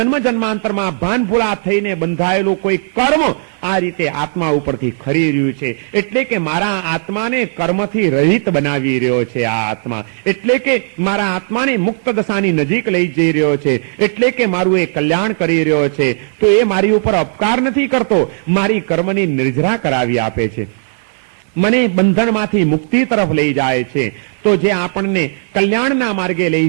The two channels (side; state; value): left; silent; digital silence